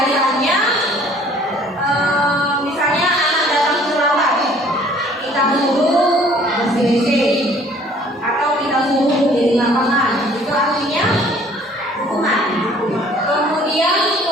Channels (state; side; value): normal; both; correlation 0.55